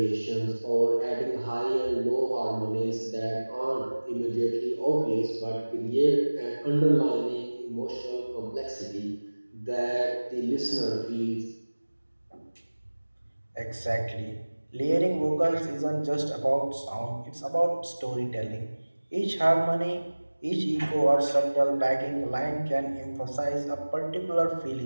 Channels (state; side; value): inverted; both; correlation -1.00